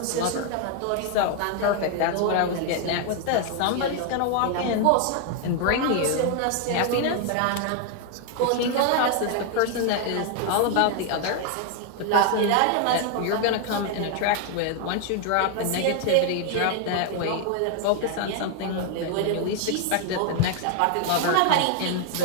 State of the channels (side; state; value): both; different; correlation 0.00